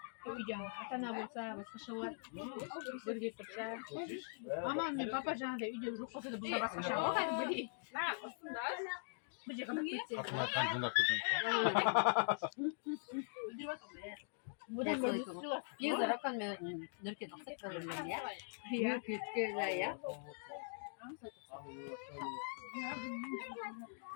Koyacağım. Atana bulsa, başka var. Böyle yapacağım. Aman ne papa canı da video çok olsa da burada başka şey var. Hadi böyle. Ne yapıyorsun da? Bıcak ama bitti. Buradan böyle tutuyorlar. Bir zarakkan nörke naksak kalırlar ya. Bir kütküler ya.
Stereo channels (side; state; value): right; silent; digital silence